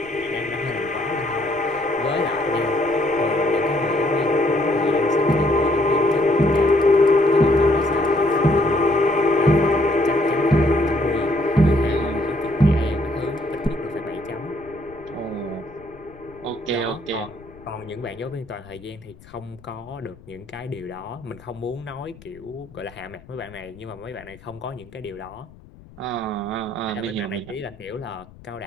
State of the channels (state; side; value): noise; left; rumble, 23 dB below the sound